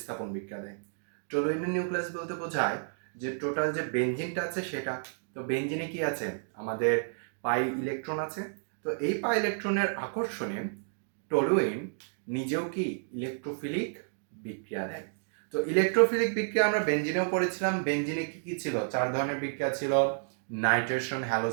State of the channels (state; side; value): silent; left; digital silence